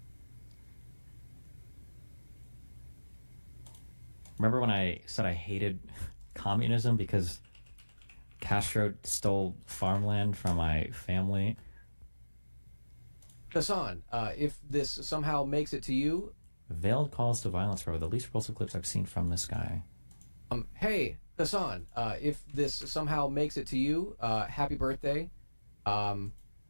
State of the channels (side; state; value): both; inverted; correlation -1.00